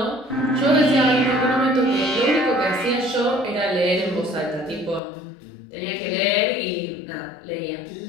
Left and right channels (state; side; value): drops out; right; at 5.0 s